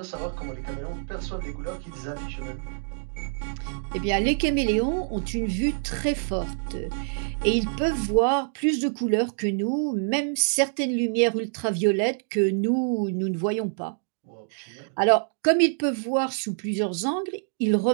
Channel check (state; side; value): silent; left; digital silence